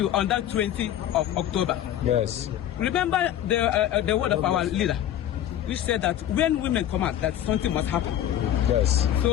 on that 20th of October. Yes. Remember the word of our leader, which said that when women come out, that something must happen. Yes.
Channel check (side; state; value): right; quieter; 11.4 dB